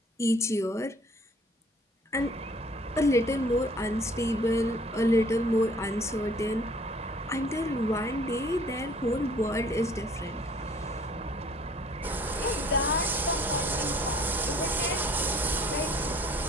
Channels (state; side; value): normal; both; correlation 0.56